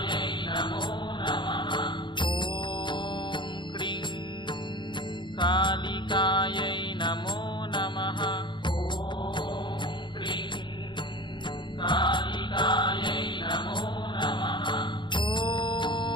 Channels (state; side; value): late; right; 0.23 ms